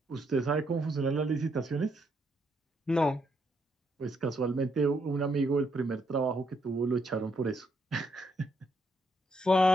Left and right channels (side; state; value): both; normal; correlation 0.75